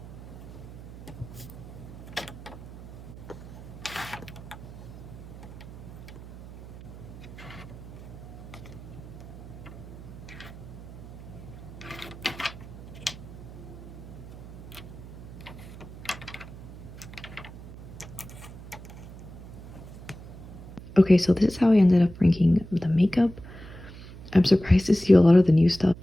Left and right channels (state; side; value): noise; right; hum, 14 dB below the sound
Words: Okay, so this is how I ended up ranking the makeup. I'm surprised to see a lot of the new stuff